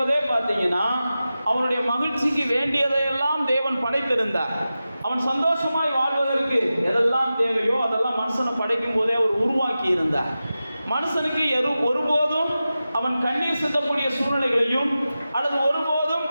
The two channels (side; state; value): both; inverted; correlation -0.94